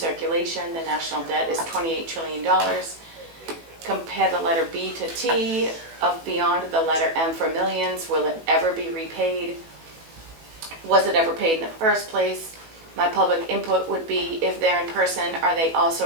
The national debt is $28 trillion. Compare the letter B to T of beyond the letter M for millions. Will it ever be repaid? Was it ever paid in the first place? My public input would be, if they're in person, are they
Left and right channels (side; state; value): left; late; 18 ms